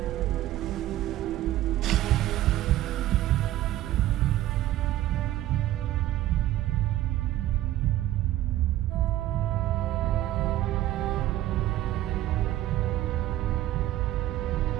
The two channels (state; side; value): quieter; left; 14.3 dB